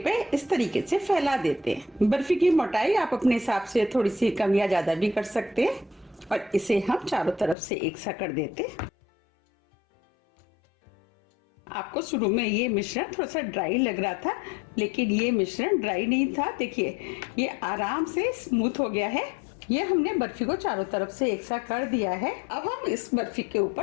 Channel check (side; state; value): right; drops out; at 7.6 s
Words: पे इस तरीके से फैला देते हैं। बर्फी की मोटाई आप अपने हिसाब से थोड़ी सी कम या ज्यादा भी कर सकते हैं और इसे हम चारों तरफ से एक सा कर देते। आपको शुरू में ये मिश्रण थोड़ा सा ड्राई लग रहा था, लेकिन ये मिश्रण ड्राई नहीं था। देखिए ये आराम से स्मूथ हो गया है। ये हमने बर्फी को चारों तरफ से एक सा कर दिया है। अब हम इस बर्फी के